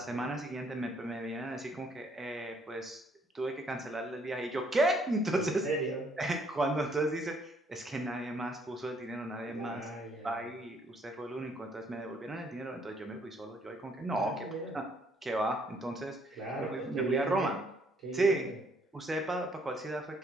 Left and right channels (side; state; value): both; normal; correlation 0.66